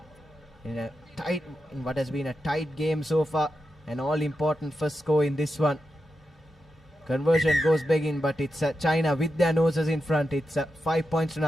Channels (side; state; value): both; normal; correlation 0.89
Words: in what has been a tight game so far. An all-important first score in this one. Conversion goes begging, but it's China with their noses in front. It's 5 points to